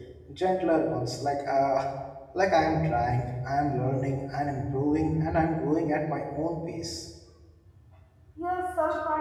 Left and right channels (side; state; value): both; identical; correlation 1.00